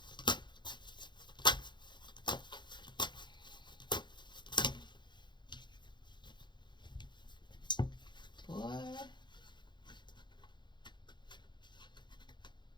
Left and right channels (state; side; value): late; right; 0.22 ms